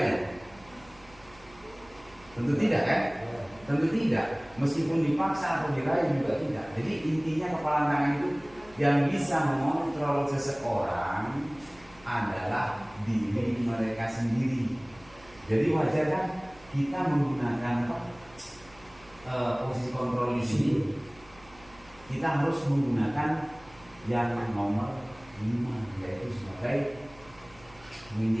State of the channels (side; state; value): right; noise; hum, 25 dB below the sound